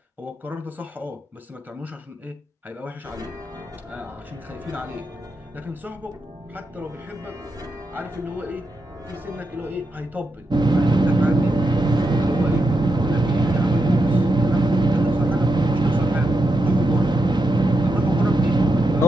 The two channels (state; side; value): normal; both; correlation 0.85